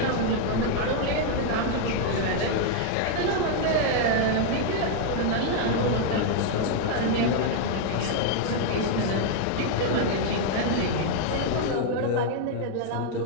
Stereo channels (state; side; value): different; both; correlation 0.00